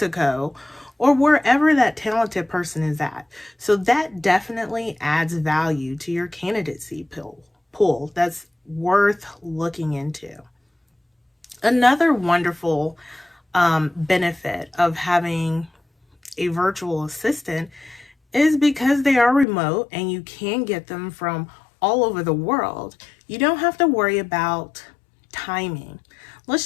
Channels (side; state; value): right; drops out; at 19.5 s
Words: or wherever that talented person is at. So that definitely adds value to your candidacy pool. That's worth looking into. Another wonderful benefit of having a virtual assistant is because they are remote and you can get them from all over the world. You don't have to worry about timing.